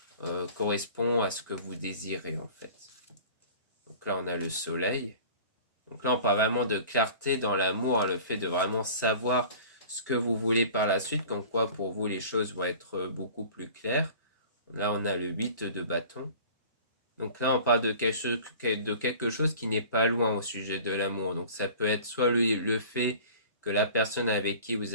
correspond à ce que vous désirez en fait. Donc là, on a le soleil. Donc là, on parle vraiment de clarté dans l'amour, le fait de vraiment savoir ce que vous voulez par la suite, comme quoi pour vous les choses vont être beaucoup plus claires. Là, on a le 8 de bâton. Donc là, on parle de quelque chose qui n'est pas loin au sujet de l'amour. Donc ça peut être soit le fait que la personne avec qui vous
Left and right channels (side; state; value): both; inverted; correlation -0.43